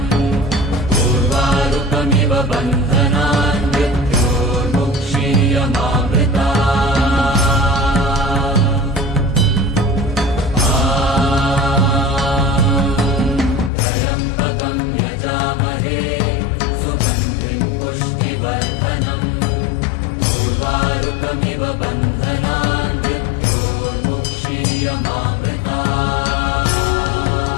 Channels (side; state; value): right; drops out; at 13.7 s